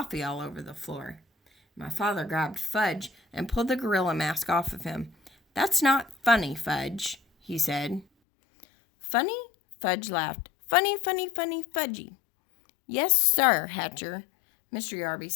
all over the floor. My father grabbed Fudge and pulled the gorilla mask off of him. That's not funny, Fudge, he said. Funny? Fudge laughed. Funny, funny, funny, Fudgy. Yes, sir, Hatcher, Mr. Yarby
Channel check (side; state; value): right; drops out; at 8.1 s